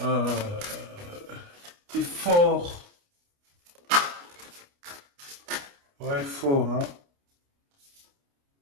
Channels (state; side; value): late; left; 29 ms